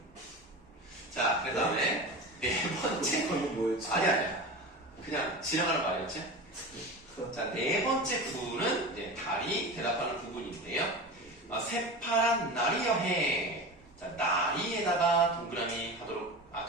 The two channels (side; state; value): both; normal; correlation 0.29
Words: 자, 그 다음에 네 번째. 뭐였지? 아니야. 그냥 지나가는 말이었지? 자, 네 번째 구는 이제 달이 대답하는 부분인데요. 새파란 날이여해. 자, 나리에다가 동그라미 하도록,